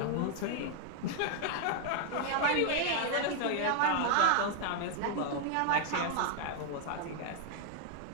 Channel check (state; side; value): different; both; correlation 0.00